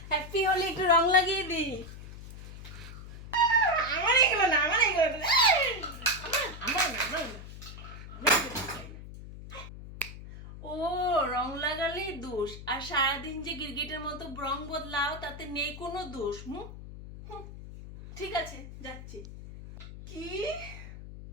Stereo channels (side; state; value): left; noise; hum, 13 dB below the sound